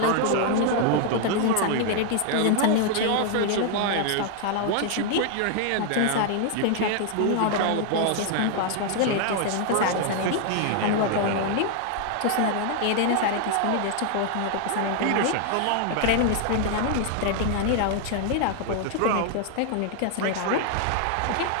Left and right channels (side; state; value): both; different; correlation 0.00